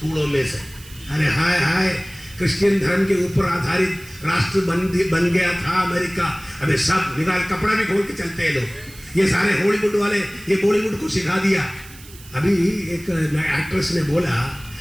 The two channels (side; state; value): right; noise; hiss, 20 dB below the sound